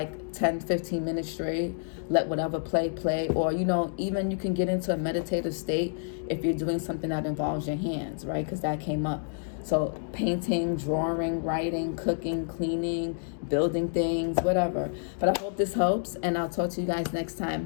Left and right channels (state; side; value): silent; right; digital silence